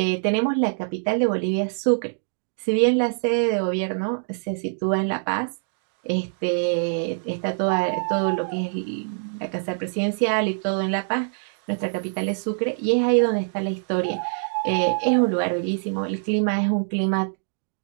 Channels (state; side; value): silent; left; digital silence